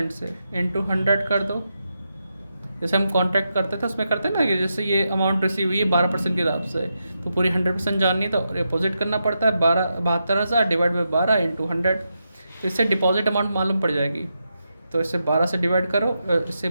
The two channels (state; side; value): inverted; both; correlation -0.86